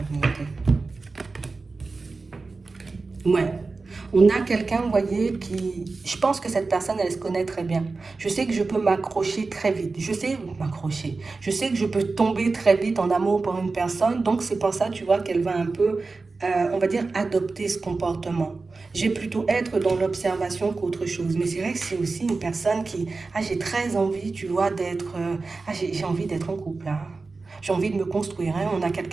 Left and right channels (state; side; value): quieter; left; 3.9 dB